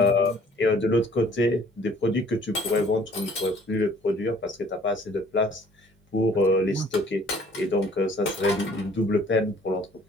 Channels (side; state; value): both; normal; correlation 0.56